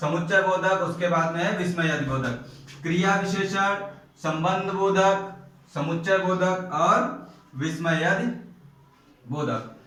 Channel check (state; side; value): identical; both; correlation 1.00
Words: समुच्चय बोधक, उसके बाद में है विस्मय बोधक। क्रिया विशेषण, संबंध बोधक, समुच्चय बोधक और विस्मय बोधक,